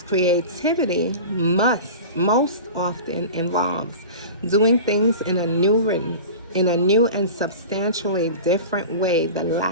creativity most often involves doing things in a new and substantially different way. The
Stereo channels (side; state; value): both; inverted; correlation -0.34